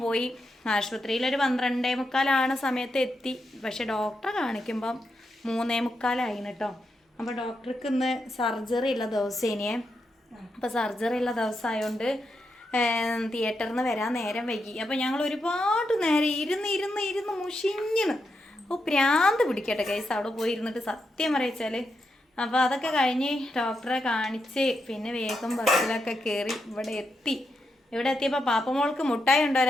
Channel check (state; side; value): normal; both; correlation 0.84